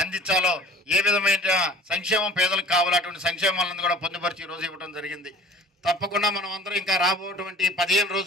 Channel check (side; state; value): both; normal; correlation 0.46